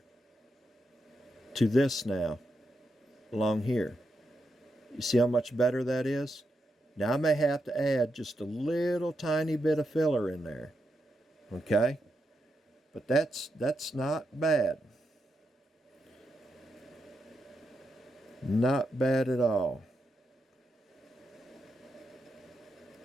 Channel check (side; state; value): both; normal; correlation 0.84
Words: to this now, along here. You see how much better that is? Now I may have to add just a little tiny bit of filler in there. Okay? But that's not bad. Not bad at all.